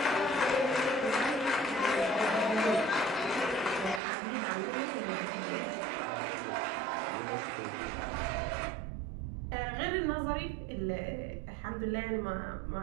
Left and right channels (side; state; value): left; drops out; at 4.0 s